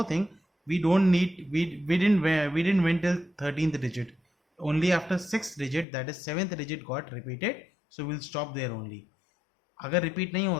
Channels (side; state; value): right; drops out; at 5.9 s